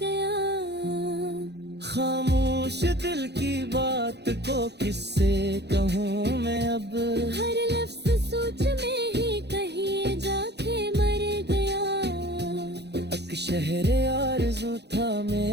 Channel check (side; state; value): left; late; 0.49 ms